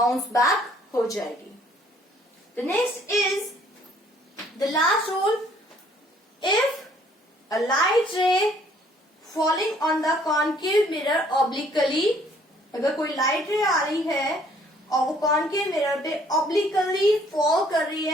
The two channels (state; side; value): normal; both; correlation 0.61